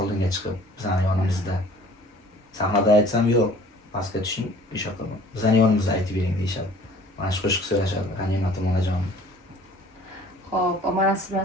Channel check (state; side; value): normal; both; correlation 0.50